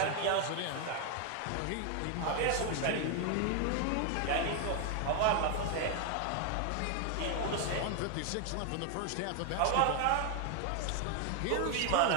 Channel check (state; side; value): different; both; correlation 0.01